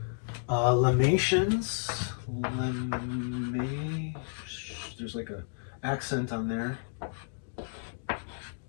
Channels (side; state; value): right; silent; digital silence